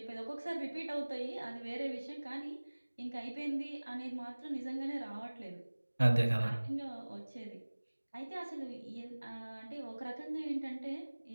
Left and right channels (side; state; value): both; inverted; correlation -1.00